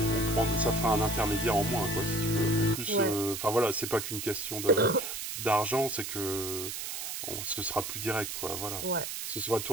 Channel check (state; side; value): noise; right; hiss, 5 dB below the sound